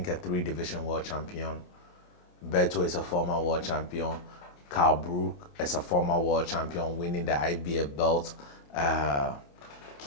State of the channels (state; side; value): late; right; 28 ms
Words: a three-division world champion. Berto is a former world champion. Carl Brook is a former world champion, winning the IBF belt.